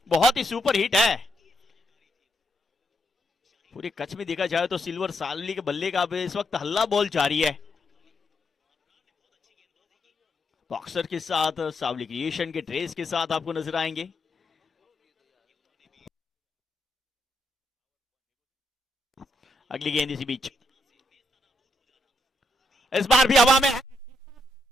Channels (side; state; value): both; normal; correlation 0.80